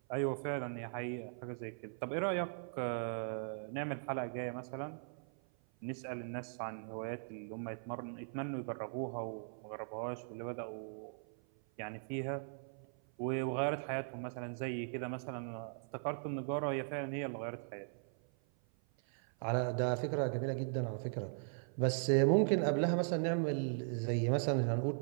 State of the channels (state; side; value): silent; left; 52 dB below the other